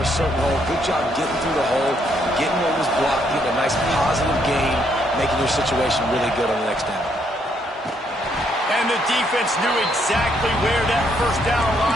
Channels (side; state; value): both; normal; correlation 0.72